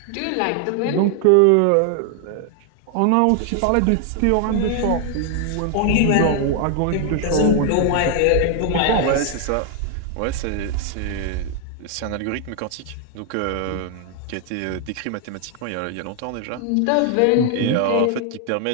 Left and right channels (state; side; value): different; both; correlation 0.00